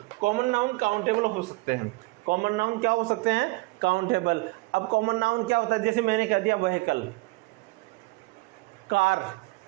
काउंटेबल हो सकते हैं। कॉमन नाउन क्या हो सकते हैं, काउंटेबल। अब कॉमन नाउन क्या होता है, जैसे मैंने कह दिया व्हीकल, कार,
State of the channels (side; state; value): left; quieter; 23.4 dB